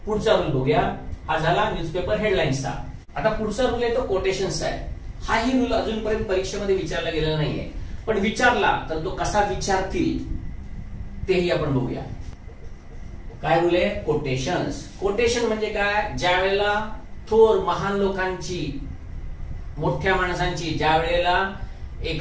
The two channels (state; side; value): identical; both; correlation 1.00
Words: पुढचा रूल बघूया. हा झाला न्यूजपेपर हेडलाईन्सचा. आता पुढचा रूल आहे तो कोटेशन्सचा आहे. हाही रूल अजूनपर्यंत परीक्षेमध्ये विचारला गेलेला नाहीये, पण विचारला तर तो कसा विचारतील तेही आपण बघूया. काय रूल आहे, कोटेशन्स. कोटेशन म्हणजे काय, ज्या वेळेला थोर महान लोकांची, मोठ्या माणसांची ज्या वेळेला